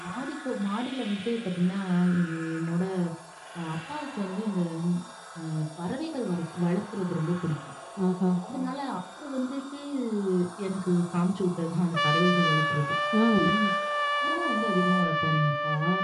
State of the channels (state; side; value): identical; both; correlation 1.00